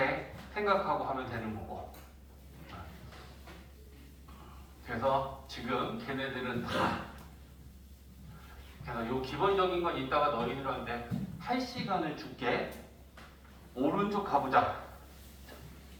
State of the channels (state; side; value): identical; both; correlation 1.00